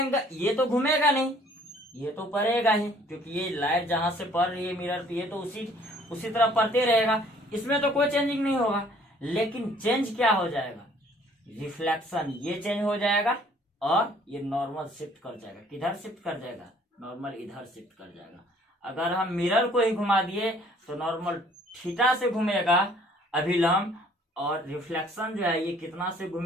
ये तो घूमेगा नहीं, ये तो पड़ेगा ही, क्योंकि ये लाइट जहां से पड़ रही है मिरर पे, ये तो उसी तरह पड़ते रहेगा। इसमें तो कोई चेंजिंग नहीं होगा। लेकिन चेंज क्या हो जाएगा? रिफ्लेक्शन। ये चेंज हो जाएगा और ये नॉर्मल शिफ्ट कर जाएगा। किधर शिफ्ट कर जाएगा? नॉर्मल इधर शिफ्ट कर जाएगा। अगर हम मिरर को ही घुमा दिए तो नॉर्मल थीटा से घूमेगा अभिलंब, और रिफ्लेक्शन जो है ये कितना से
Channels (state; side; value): normal; both; correlation 0.58